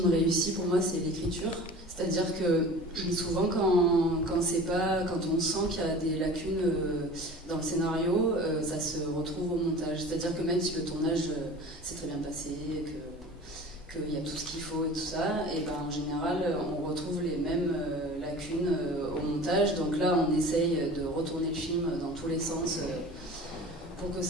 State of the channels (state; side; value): normal; both; correlation 0.40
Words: réussi, pour moi, c'est l'écriture. C'est-à-dire que souvent, quand on sent qu'il y a des lacunes dans le scénario, ça se retrouve au montage. C'est-à-dire que même si le tournage s'est très bien passé, qu'il y a tout ce qu'il faut et tout ça, et ben en général, on retrouve les mêmes lacunes au montage. Donc là, on essaye de retourner le film dans tous les sens pour que